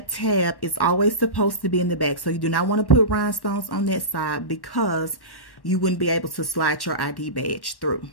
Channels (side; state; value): right; late; 1.1 ms